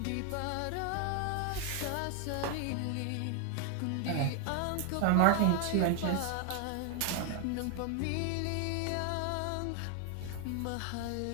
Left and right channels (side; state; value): both; different; correlation 0.01